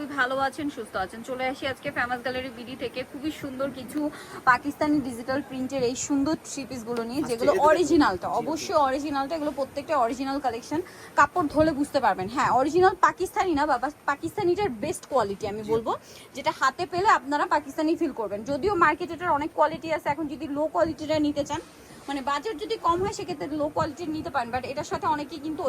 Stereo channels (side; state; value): both; identical; correlation 1.00